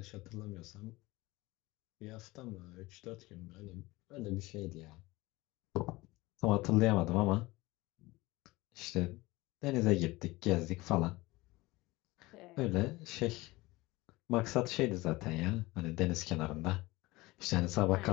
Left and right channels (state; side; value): quieter; right; 20.8 dB